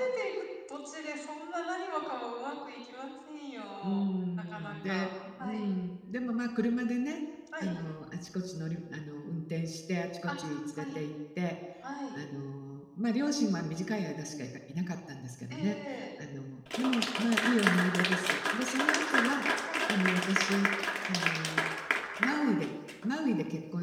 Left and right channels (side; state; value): both; identical; correlation 1.00